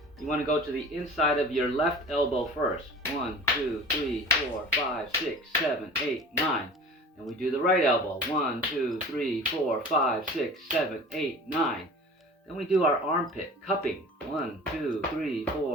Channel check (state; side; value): normal; both; correlation 0.40